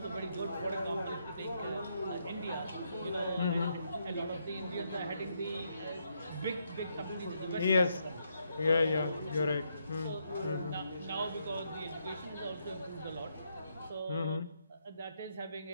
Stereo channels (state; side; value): inverted; both; correlation -0.78